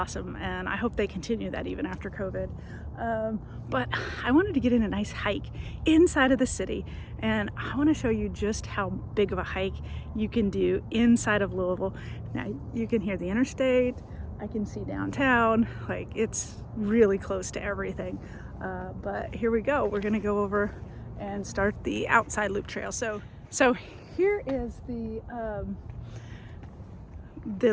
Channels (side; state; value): both; identical; correlation 1.00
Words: and I hope they continue that even after COVID. But I wanted to get in a nice hike inside of the city, and I want to show you just how big of a hike you can do inside of Louisville. Now you can hear the interstate, I can see downtown, like it's really close to everything. But here we go, we're gonna go over and start the outside loop trail. So here is the